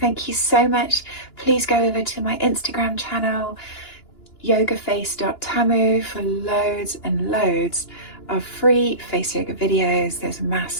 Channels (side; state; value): right; late; 2.9 ms